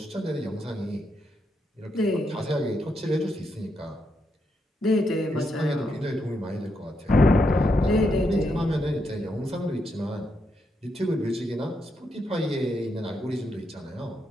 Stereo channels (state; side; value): normal; both; correlation 0.81